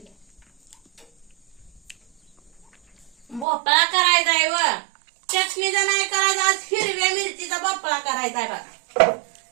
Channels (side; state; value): left; drops out; at 3.5 s